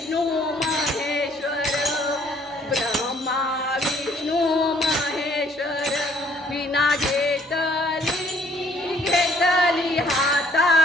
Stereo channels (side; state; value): both; normal; correlation 0.62